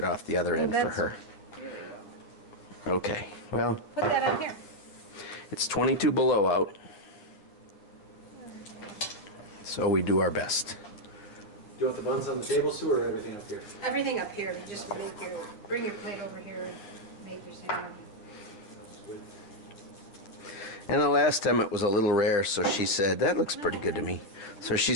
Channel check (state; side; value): late; right; 10 ms